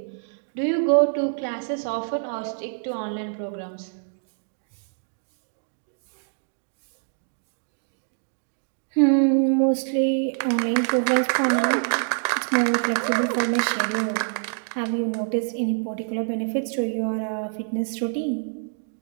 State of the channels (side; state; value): left; silent; digital silence